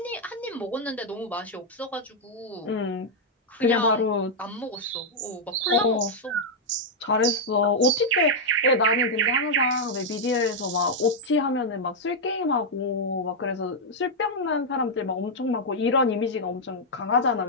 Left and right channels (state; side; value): normal; both; correlation -0.03